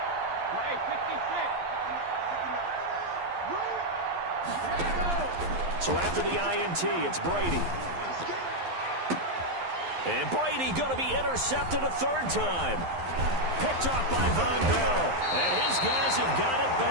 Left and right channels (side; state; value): left; late; 11 ms